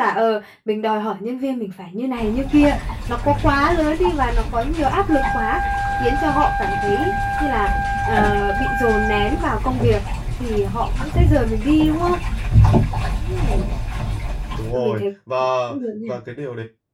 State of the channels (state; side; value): identical; both; correlation 1.00